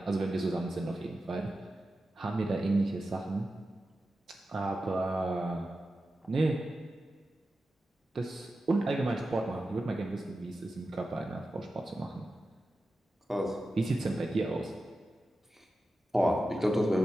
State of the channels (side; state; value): both; normal; correlation 0.92